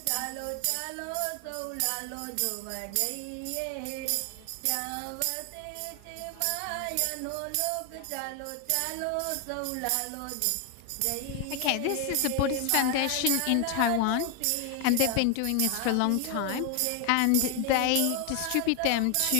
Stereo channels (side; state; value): both; different; correlation 0.01